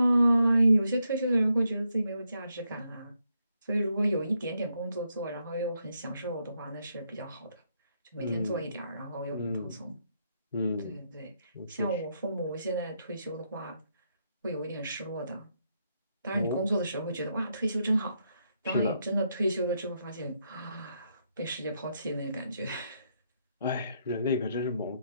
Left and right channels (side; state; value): both; inverted; correlation -0.79